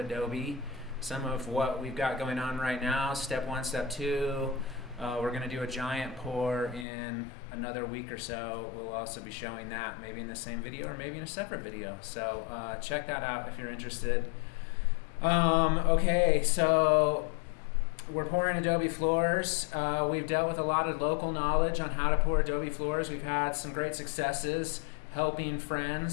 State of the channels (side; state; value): right; drops out; at 6.9 s